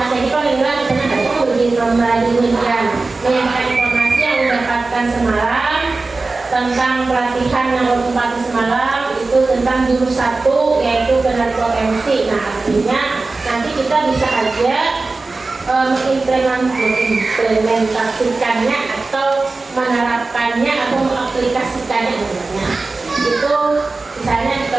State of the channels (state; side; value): quieter; left; 3.6 dB